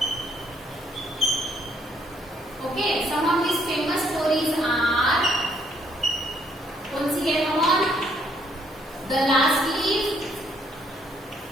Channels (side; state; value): both; normal; correlation 0.69